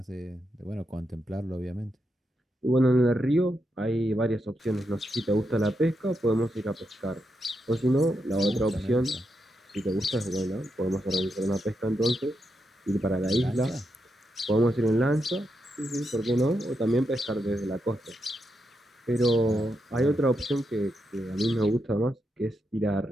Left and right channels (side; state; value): both; normal; correlation 0.84